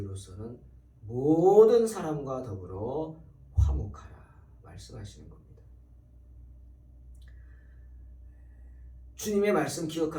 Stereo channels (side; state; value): both; identical; correlation 1.00